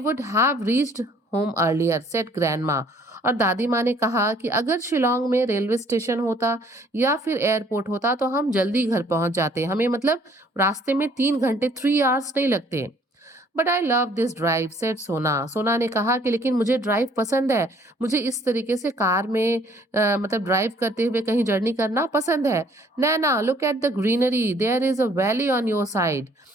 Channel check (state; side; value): normal; both; correlation 0.60